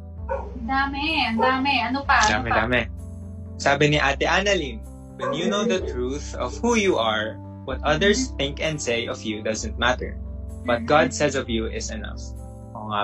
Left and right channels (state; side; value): identical; both; correlation 1.00